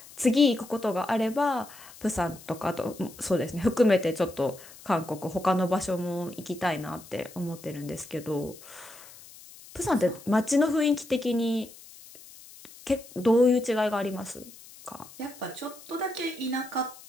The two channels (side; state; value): left; noise; hiss, 20 dB below the sound